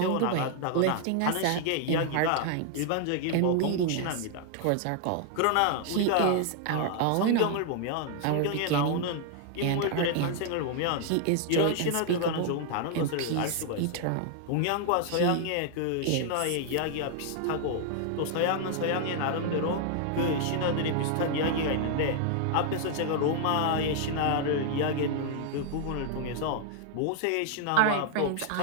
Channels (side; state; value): both; different; correlation 0.00